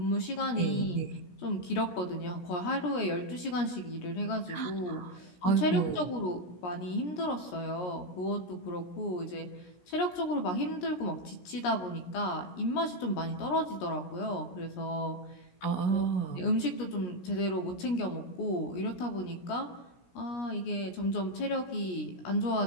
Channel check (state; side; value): late; right; 17 ms